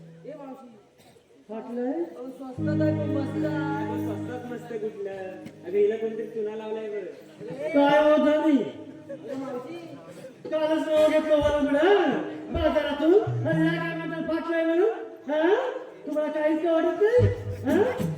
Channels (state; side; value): identical; both; correlation 1.00